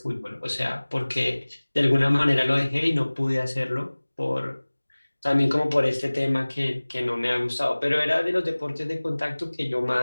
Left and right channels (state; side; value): inverted; both; correlation -1.00